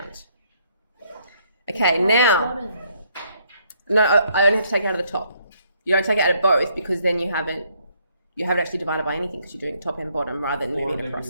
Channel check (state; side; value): inverted; both; correlation -0.69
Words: Okay, now, no, I only have to take it out of the top. You don't take it out of both because then you haven't actually divided by anything because you're doing top and bottom rather than moving